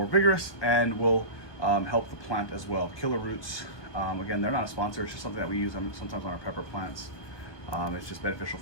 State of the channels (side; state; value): right; late; 1.2 ms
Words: vigorous, and will help the plant as well. Killer roots, again, they're not a sponsor, it's just something that we use sometimes on our pepper plants. It's just beneficial